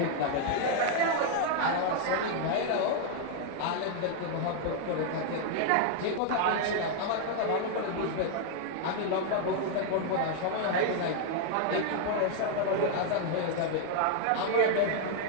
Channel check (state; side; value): different; both; correlation 0.00